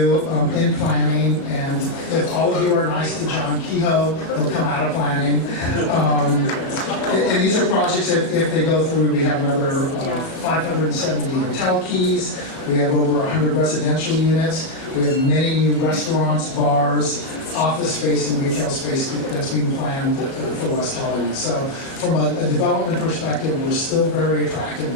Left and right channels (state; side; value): late; right; 36 ms